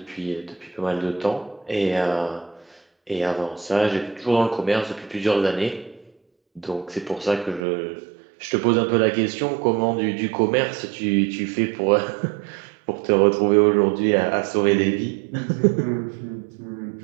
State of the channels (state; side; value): drops out; left; at 7.6 s